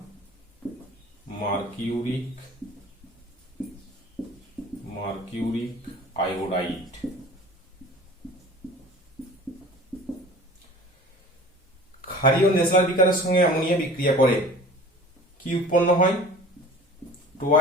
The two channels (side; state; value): both; normal; correlation 0.43